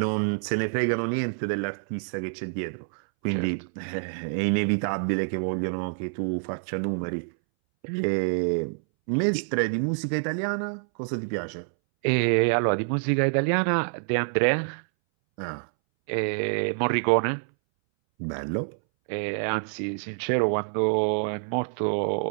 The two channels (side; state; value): left; silent; 60 dB below the other